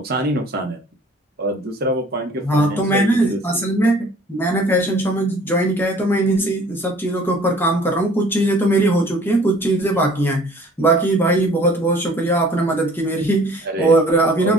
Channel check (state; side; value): normal; both; correlation 0.52